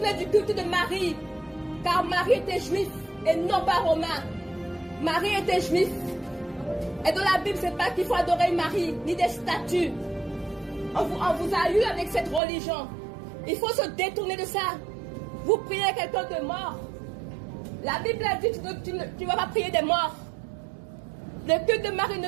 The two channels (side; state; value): left; drops out; at 12.4 s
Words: du culte de Marie. Car Marie était juif et non pas romain. Marie était juif. Et dans la Bible, c'est pas qu'il faut adorer Marie, ni des statues. On vous a eu avec cette religion. Il faut se détourner de ça. Vous priez quelqu'un de mort. La Bible a dit que tu ne vas pas prier des morts. Le culte de Marie ne